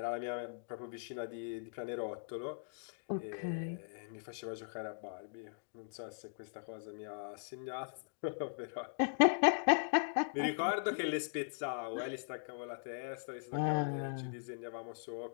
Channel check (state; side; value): silent; right; digital silence